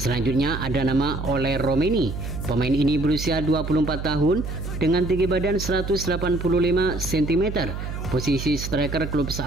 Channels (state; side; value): noise; right; hum, 6 dB below the sound